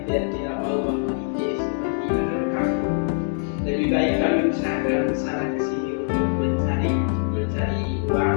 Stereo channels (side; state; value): right; silent; digital silence